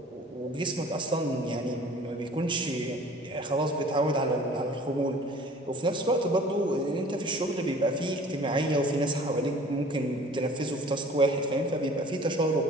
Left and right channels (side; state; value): both; normal; correlation 0.48